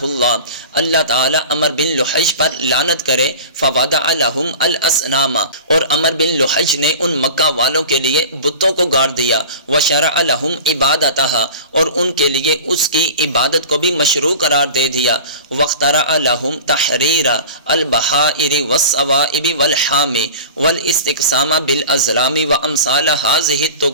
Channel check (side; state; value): both; inverted; correlation -0.36